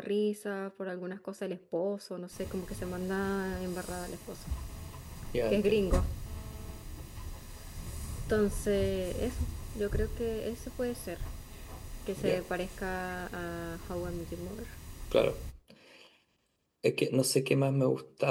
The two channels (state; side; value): identical; both; correlation 1.00